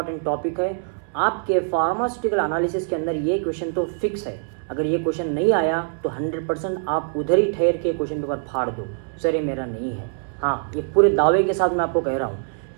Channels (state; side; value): silent; left; 63 dB below the other